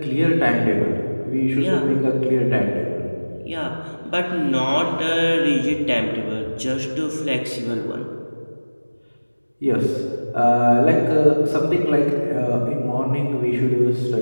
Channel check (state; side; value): inverted; both; correlation -1.00